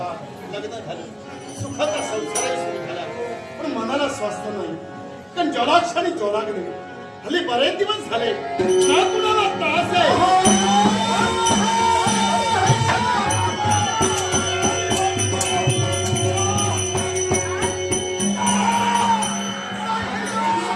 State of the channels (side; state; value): both; identical; correlation 1.00